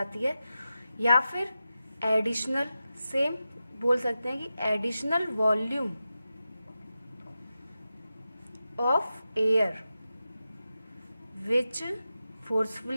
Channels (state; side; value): inverted; both; correlation -0.91